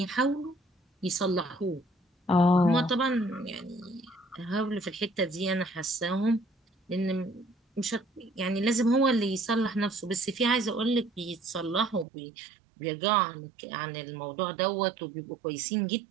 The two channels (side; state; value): left; drops out; at 12.1 s